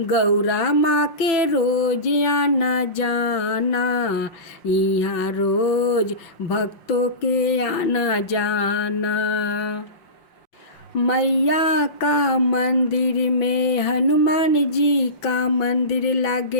गौरा माँ के रोज आना जाना। यहाँ रोज भक्तों के आना जाना। मैया का मंदिर में हनुमान जी का मंदिर,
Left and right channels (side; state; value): right; late; 6.0 ms